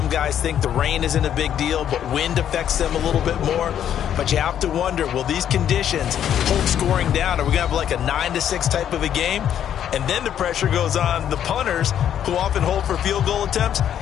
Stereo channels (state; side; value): quieter; right; 9.8 dB